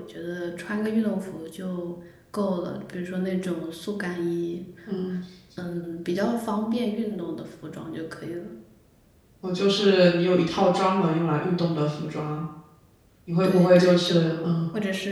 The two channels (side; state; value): both; identical; correlation 1.00